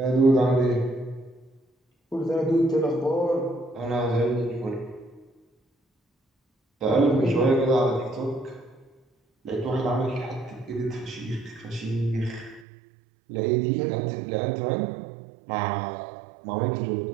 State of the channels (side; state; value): left; drops out; at 12.7 s